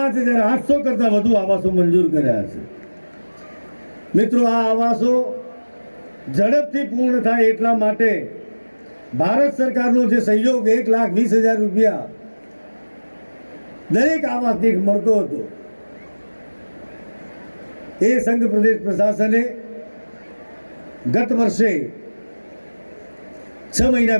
કરતાં વધુ આવાસો મંજૂર કર્યા છે. મિત્રો, આ આવાસો ઝડપથી પૂર્ણ થાય એટલા માટે ભારત સરકારનો જે સહયોગ 1,20,000 રૂપિયા દરેક આવાસ દીઠ મળતો હતો, એ સંઘ પ્રદેશ પ્રશાસને ગત વર્ષે 6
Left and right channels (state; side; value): inverted; both; correlation -1.00